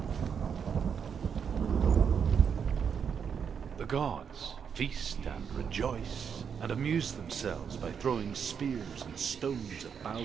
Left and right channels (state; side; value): quieter; left; 7.0 dB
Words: The gods feast and rejoice and amuse themselves by throwing spears and stones at